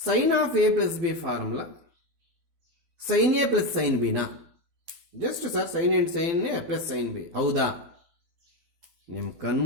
of A plus B formula sine A plus sine ಬಿನಾ? Just sir sine and sine A plus sine B. ಹೌದಾ? ನಿಮ್ಮ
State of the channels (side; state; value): left; late; 12 ms